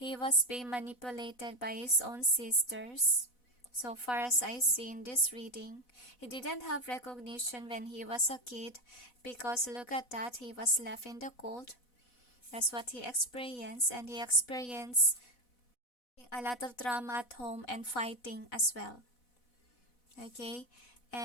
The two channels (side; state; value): right; late; 4.1 ms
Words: was being manipulated by his own sisters. So far as I see in this reading, he didn't have recognition when he was a kid, because look at that, he was left in the cold. That's what he experienced, and he experienced a lot of drama at home and fighting as well. Okay,